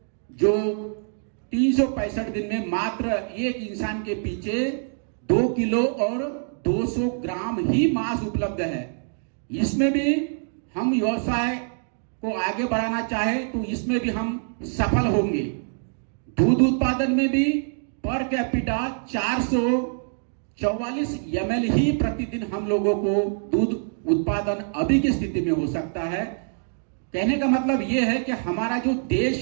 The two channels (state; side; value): silent; left; 62 dB below the other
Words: जो 365 दिन में मात्र एक इंसान के पीछे 2 किलो और 200 ग्राम ही मांस उपलब्ध है। इसमें भी हम व्यवसाय को आगे बढ़ाना चाहे तो इसमें भी हम सफल होंगे। दूध उत्पादन में भी पर कैपिटा 444 ml ही प्रतिदिन हम लोगों को दूध उत्पादन अभी की स्थिति में हो सकता है। कहने का मतलब यह है कि हमारा जो